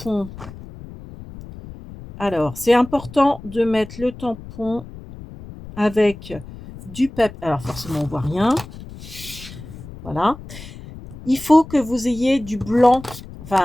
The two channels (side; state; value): left; noise; rumble, 15 dB below the sound